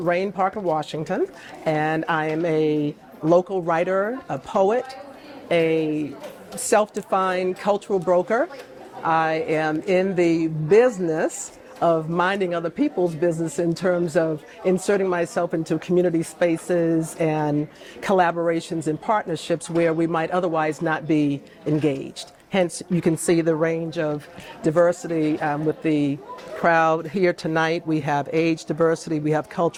Parker Washington, and I am a local writer, a poet, a self-defined cultural broker. I am in the business of minding other people's business in terms of inserting myself into community spaces and collaborations and partnerships where we might otherwise not be engaged. Hence, you can see the range of diversity with the crowd here tonight. We have age diversity, we have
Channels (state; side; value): identical; both; correlation 1.00